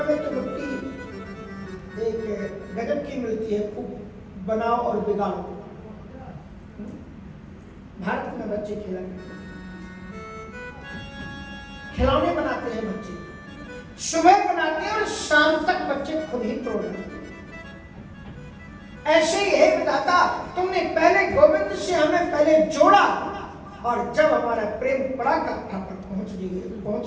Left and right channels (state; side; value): identical; both; correlation 1.00